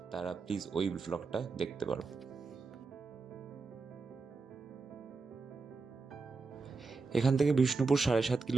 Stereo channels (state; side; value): quieter; left; 4.3 dB